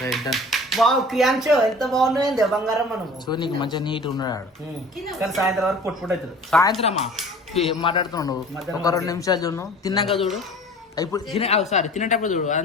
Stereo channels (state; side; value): normal; both; correlation 0.44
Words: ఎంత బాగున్నాయండి బంగారం మనం చూడనీకి మంచిగా నీట్ ఉన్నాడు కానీ సాయంత్రం వరకు పొట్టు అవుతుంది సాయంత్రమా ఏం మాట్లాడుతున్నావు ఒక 2 నిమిషాలు చూడు తిన్నాక చూడు ఇప్పుడు తినేటప్పుడు చూడు